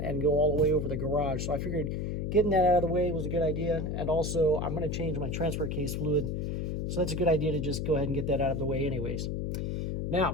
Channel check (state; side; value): noise; left; hum, 1 dB below the sound